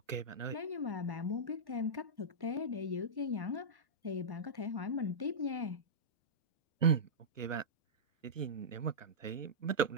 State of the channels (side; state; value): left; late; 1.1 ms